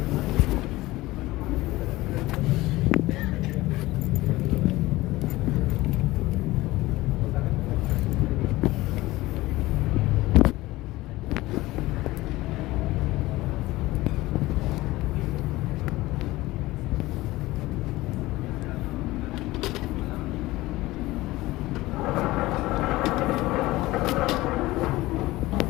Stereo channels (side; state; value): right; quieter; 18.7 dB